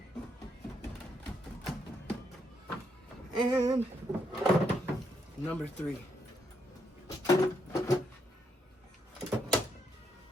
And number three.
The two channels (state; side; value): normal; both; correlation 0.77